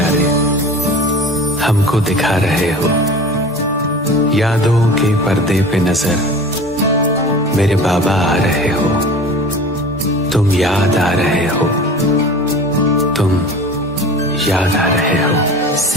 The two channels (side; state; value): both; normal; correlation 0.39